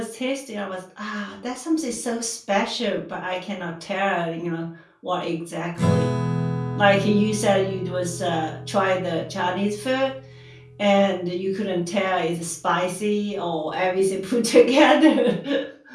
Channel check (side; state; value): both; identical; correlation 1.00